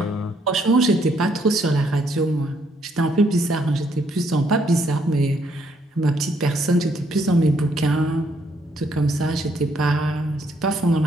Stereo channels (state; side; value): normal; both; correlation 0.71